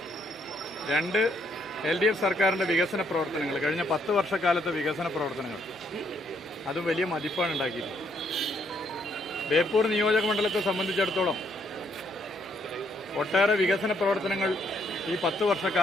2, LDF സർക്കാരിൻ്റെ വികസന പ്രവർത്തനങ്ങൾ, കഴിഞ്ഞ 10 വർഷക്കാലത്തെ വികസന പ്രവർത്തനങ്ങൾ, അതും വലിയ മതിപ്പാണ് ഉണ്ടാക്കിയത്. ബേപ്പൂർ നിയോജക മണ്ഡലത്തെ സംബന്ധിച്ചിടത്തോളം ഒട്ടേറെ വികസന പ്രവർത്തനങ്ങൾ ഈ 10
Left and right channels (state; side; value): normal; both; correlation 0.71